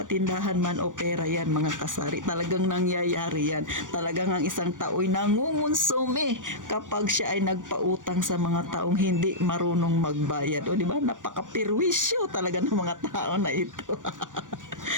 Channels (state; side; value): late; left; 0.88 ms